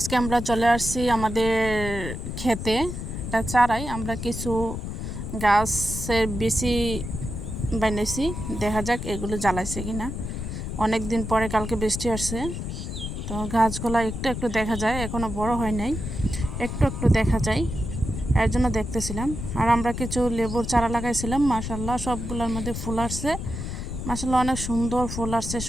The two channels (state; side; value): noise; left; rumble, 6 dB below the sound